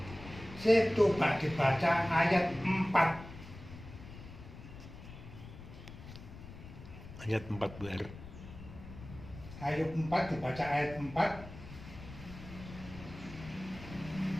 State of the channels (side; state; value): left; noise; rumble, 14 dB below the sound